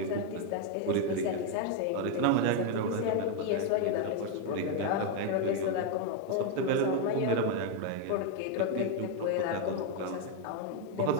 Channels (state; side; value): different; both; correlation 0.01